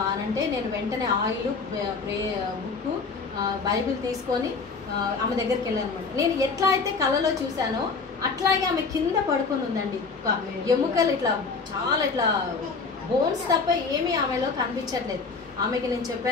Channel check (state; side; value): quieter; right; 4.6 dB